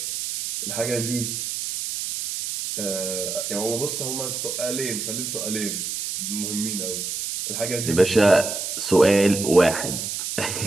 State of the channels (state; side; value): noise; right; hiss, 4 dB below the sound